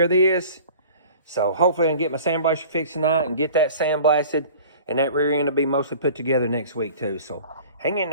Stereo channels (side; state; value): both; inverted; correlation -0.44